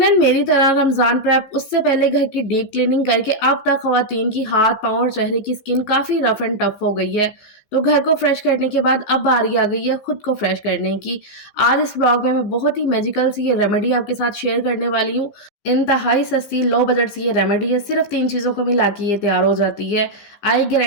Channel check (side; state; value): right; late; 15 ms